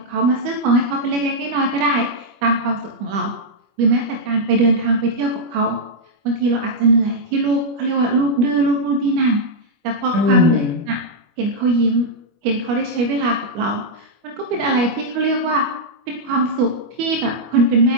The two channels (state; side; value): late; left; 25 ms